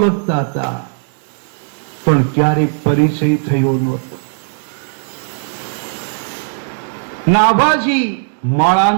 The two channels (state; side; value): silent; left; digital silence